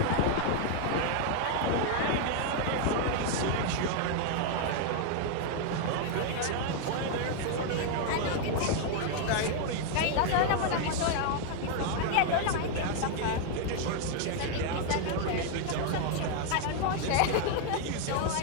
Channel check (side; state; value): both; different; correlation 0.00